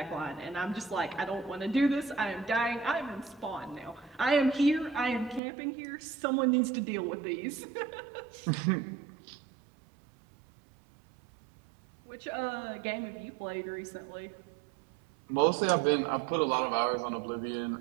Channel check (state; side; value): drops out; left; at 5.4 s